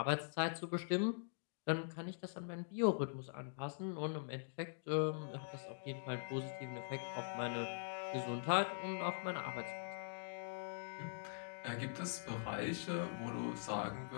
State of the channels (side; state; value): right; silent; digital silence